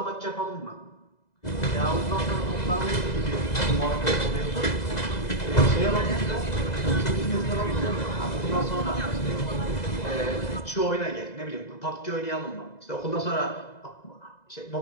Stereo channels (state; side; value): late; right; 2.0 ms